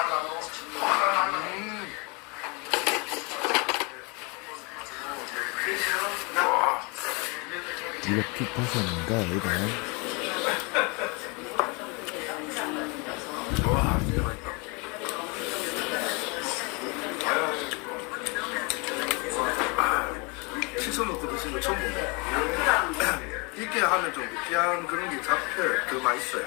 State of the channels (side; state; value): right; quieter; 29.9 dB